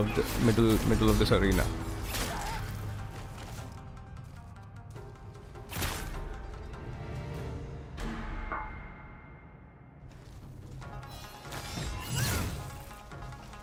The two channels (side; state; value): both; identical; correlation 1.00